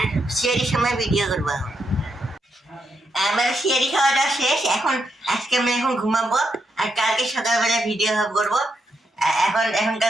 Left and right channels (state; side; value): normal; both; correlation 0.82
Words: সিয়ারির সময় ভিডিও করবো। এখন আমার সিয়ারি খাওয়াটা শেষ, এখন আজকে আমি এখন ঘুমাবো, আর কালকে সকালবেলা ভিডিও করবো।